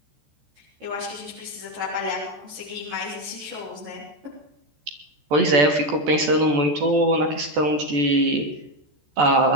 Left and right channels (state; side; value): late; left; 14 ms